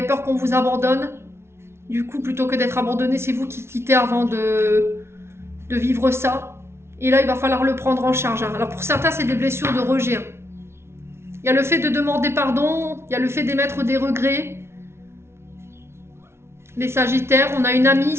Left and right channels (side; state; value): left; late; 0.12 ms